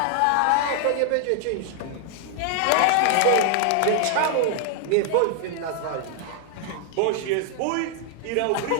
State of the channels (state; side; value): different; both; correlation 0.00